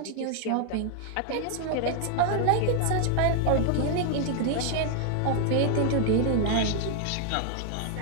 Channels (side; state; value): both; different; correlation 0.00